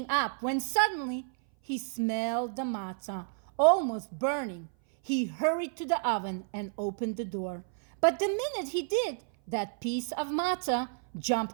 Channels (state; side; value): silent; left; 56 dB below the other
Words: up when suddenly he smelled the matzah, almost burning. He hurried to the oven and opened the door. But the minute he did, that piece of matzah